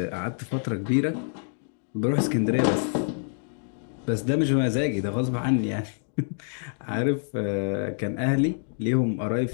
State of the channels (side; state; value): right; silent; digital silence